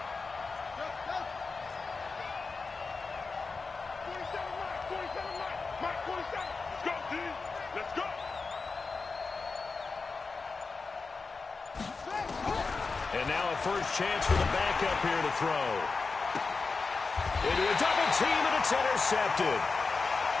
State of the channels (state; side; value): quieter; right; 4.3 dB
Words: And now a first chance for the backup here to throw. Into a double team, and it's intercepted.